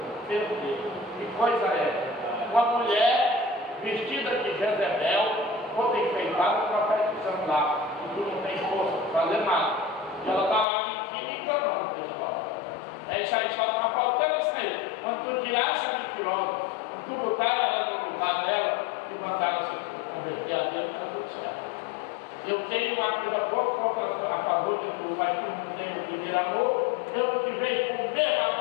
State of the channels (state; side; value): drops out; right; at 10.7 s